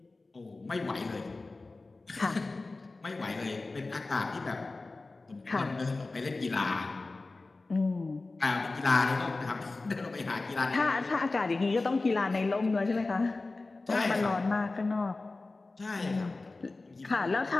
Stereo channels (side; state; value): right; quieter; 3.4 dB